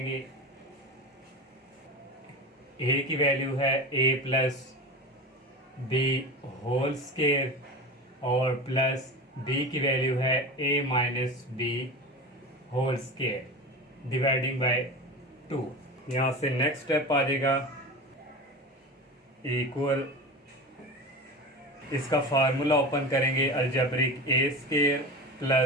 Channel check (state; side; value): normal; both; correlation 0.29